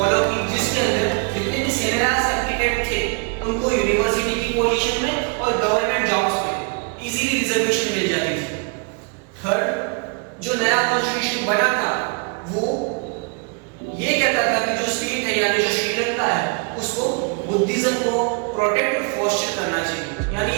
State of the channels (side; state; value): left; quieter; 34.7 dB